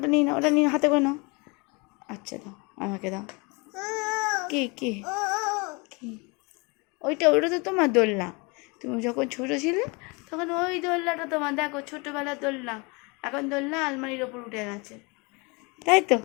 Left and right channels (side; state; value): right; quieter; 28.8 dB